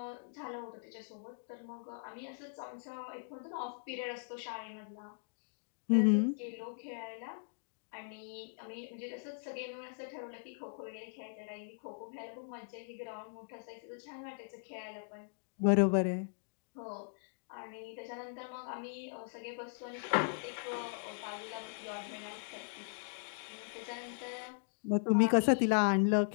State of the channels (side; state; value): right; silent; digital silence